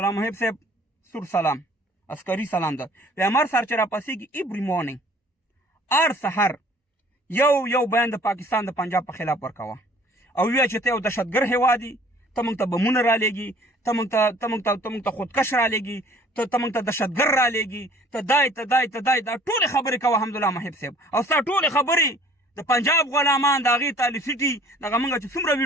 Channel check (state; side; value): normal; both; correlation 0.54